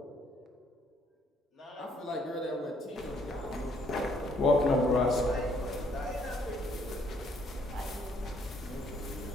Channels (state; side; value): normal; both; correlation 0.67